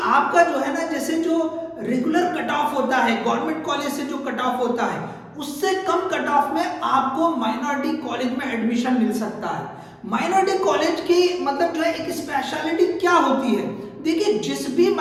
आपका जो है ना, जैसे जो रेगुलर कट ऑफ होता है गवर्नमेंट कॉलेज से जो कट ऑफ होता है उससे कम कट ऑफ में आपको माइनॉरिटी कॉलेज में एडमिशन मिल सकता है। माइनॉरिटी कॉलेज की मतलब जो है एक स्पेशलिटी क्या होती है, देखिए जिस भी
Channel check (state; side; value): identical; both; correlation 1.00